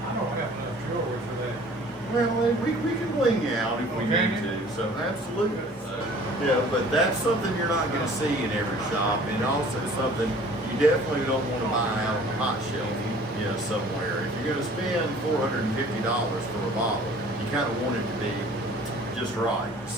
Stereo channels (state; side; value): normal; both; correlation 0.50